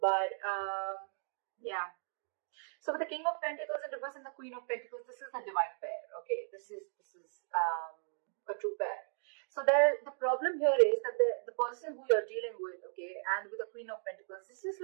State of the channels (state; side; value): silent; left; 54 dB below the other